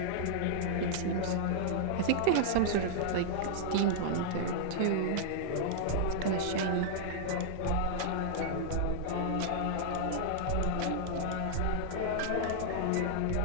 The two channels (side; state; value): both; different; correlation -0.01